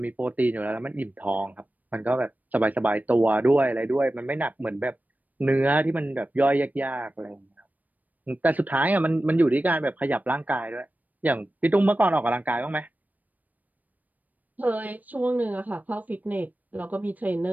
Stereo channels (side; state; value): left; late; 0.081 ms